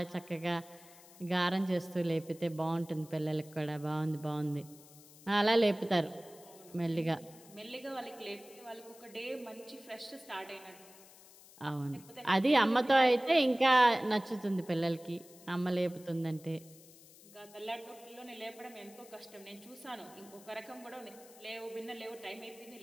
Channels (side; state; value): left; noise; hiss, 22 dB below the sound